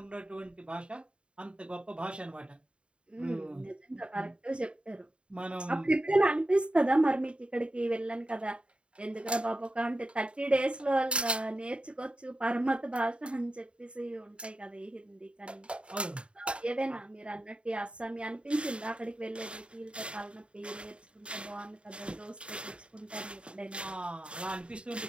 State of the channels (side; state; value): left; late; 0.056 ms